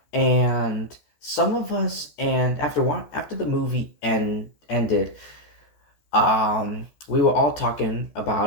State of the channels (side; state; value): right; late; 14 ms